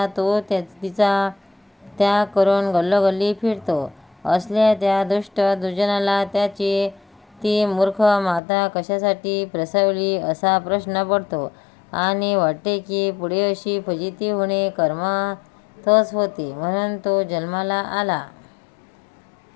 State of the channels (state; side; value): drops out; right; at 8.4 s